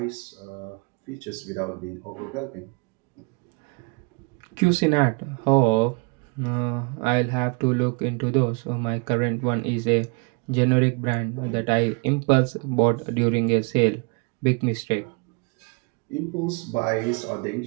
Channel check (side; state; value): left; quieter; 33.1 dB